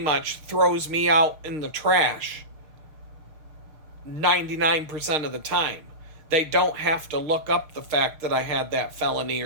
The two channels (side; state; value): left; late; 6.6 ms